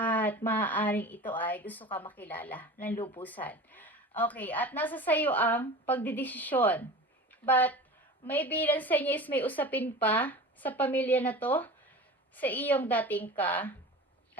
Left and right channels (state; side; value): normal; both; correlation 0.35